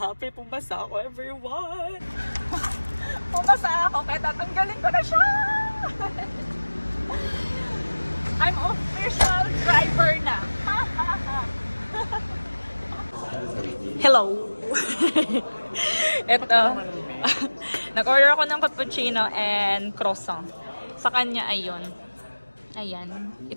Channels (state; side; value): inverted; both; correlation -1.00